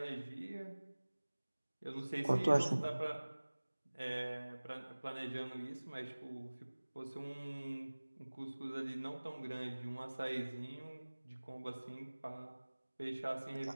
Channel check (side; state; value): both; inverted; correlation -1.00